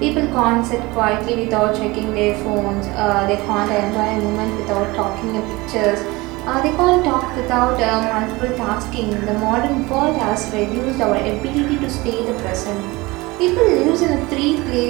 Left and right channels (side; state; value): left; quieter; 22.4 dB